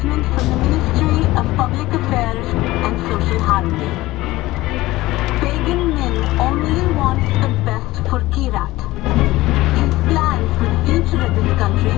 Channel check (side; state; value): right; quieter; 18.1 dB